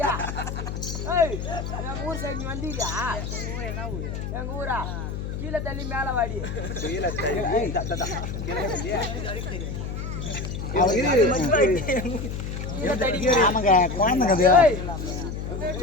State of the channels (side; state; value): left; noise; hum, 5 dB below the sound